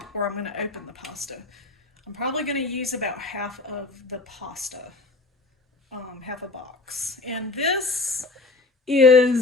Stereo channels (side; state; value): right; quieter; 3.5 dB